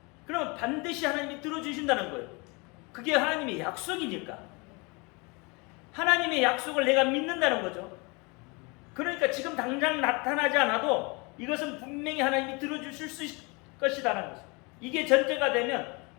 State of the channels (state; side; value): quieter; right; 28.8 dB